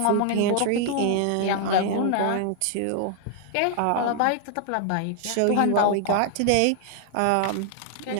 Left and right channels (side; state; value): both; different; correlation 0.00